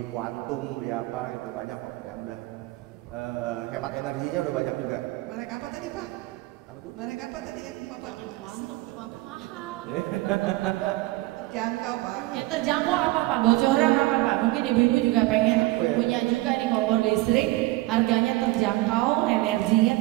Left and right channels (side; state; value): left; quieter; 19.3 dB